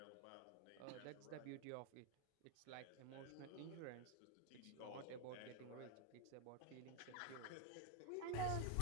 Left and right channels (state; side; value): different; both; correlation 0.00